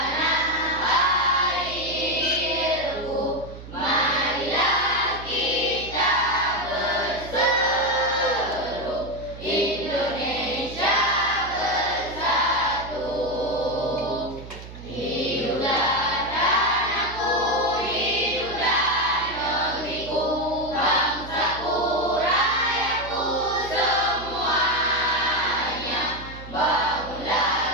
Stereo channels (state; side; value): noise; right; hum, 14 dB below the sound